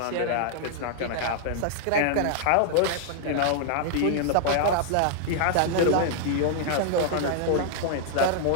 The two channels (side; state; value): both; different; correlation -0.01